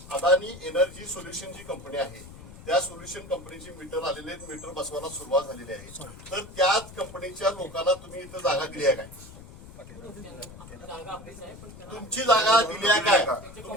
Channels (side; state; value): left; noise; rumble, 17 dB below the sound